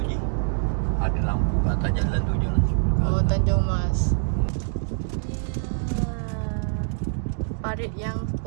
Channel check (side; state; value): left; silent; digital silence